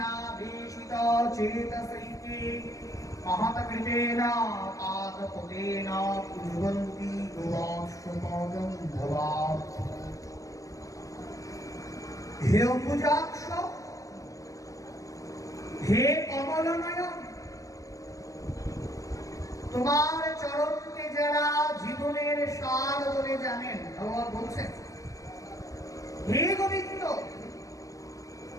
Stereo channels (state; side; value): late; right; 0.16 ms